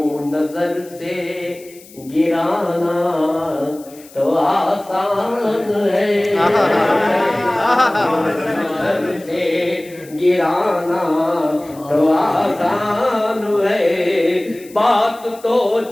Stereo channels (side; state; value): left; noise; hiss, 23 dB below the sound